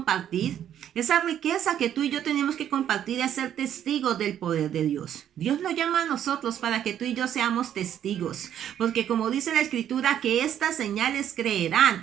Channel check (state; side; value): quieter; left; 10.2 dB